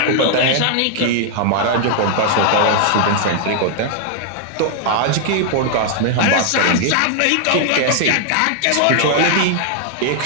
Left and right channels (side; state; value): both; different; correlation 0.00